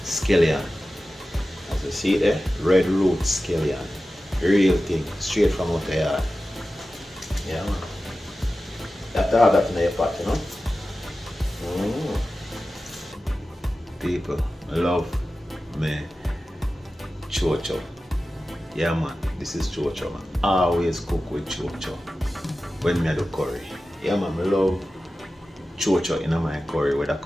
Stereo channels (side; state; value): both; normal; correlation 0.94